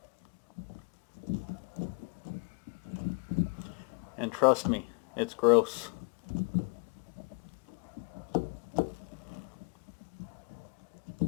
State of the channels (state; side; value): quieter; right; 34.3 dB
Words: And trust me, it's gross.